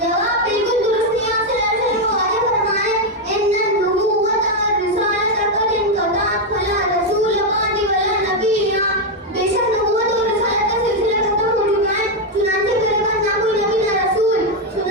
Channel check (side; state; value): both; normal; correlation 0.03